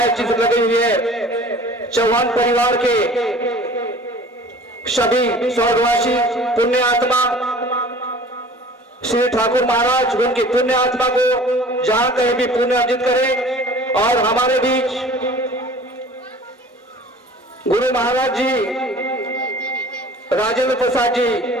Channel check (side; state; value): both; normal; correlation 0.46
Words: चित्र लगी हुई है चौहान परिवार के सभी स्वर्गवासी पुण्य आत्मा श्री ठाकुर महाराज उनकी पुण्य आत्मा को जहां कहीं भी पुण्य अर्जित करें। और हमारे बीच गुरु महाराज जी राजेंद्र प्रसाद जी